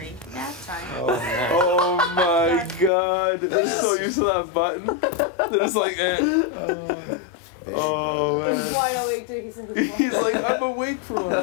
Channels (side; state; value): right; drops out; at 2.9 s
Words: Nap time. Oh my god. They're so used to that button. They're just like, eh. Oh man. He's wide awake too. He's like, I'm awake for